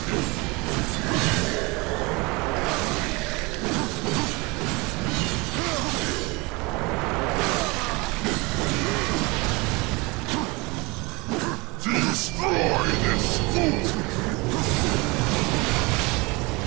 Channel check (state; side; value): quieter; left; 25.9 dB